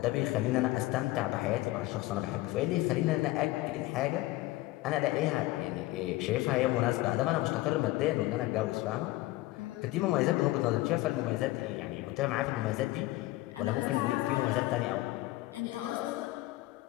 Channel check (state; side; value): quieter; right; 18.2 dB